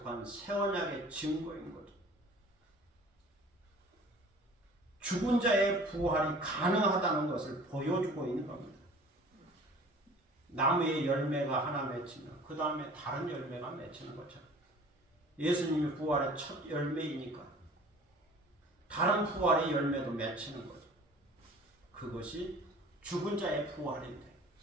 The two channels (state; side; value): normal; both; correlation 0.46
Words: 새 언약의 증거인 거죠. 죽은 자의 부활이 가능하다는 것을 보여주고 있는 겁니다. 나무의 열매가 하나 맺히면 그 다음에 다른 열매가 맺히는 것처럼 예수님이 부활의 첫 열매이니까 다른 부활의 열매도 맺히는 거죠. 그것이 죽은 자의 부활인데